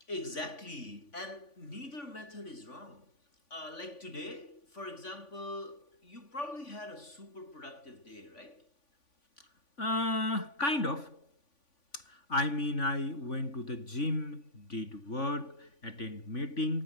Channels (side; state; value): right; late; 3.5 ms